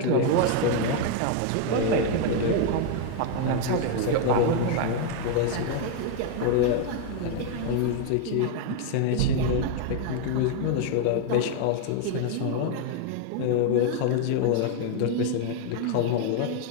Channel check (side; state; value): both; different; correlation 0.00